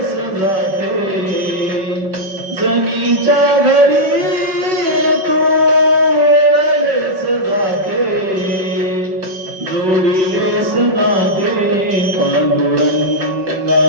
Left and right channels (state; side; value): late; left; 5.3 ms